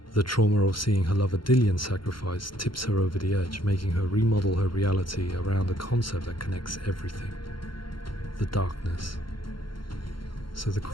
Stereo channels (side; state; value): right; late; 0.73 ms